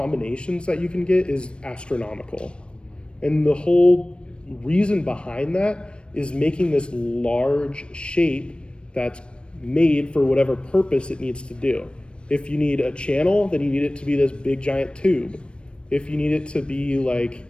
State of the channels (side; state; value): right; late; 0.057 ms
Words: that you can get is astronomical. And the whole reason behind that is making this large shape that's made for whatever purpose it needs to do. If you need a channel, then you need it to be this big giant tube. If you need it to be like